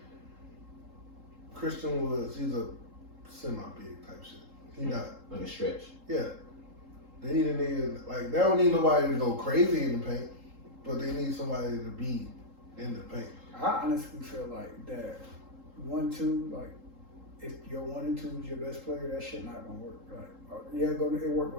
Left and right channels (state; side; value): late; left; 3.8 ms